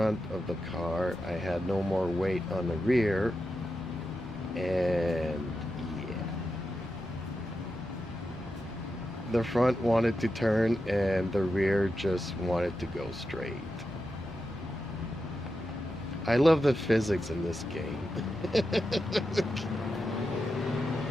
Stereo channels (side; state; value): both; normal; correlation 0.89